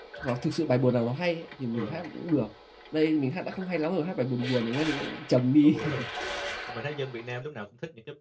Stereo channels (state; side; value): identical; both; correlation 1.00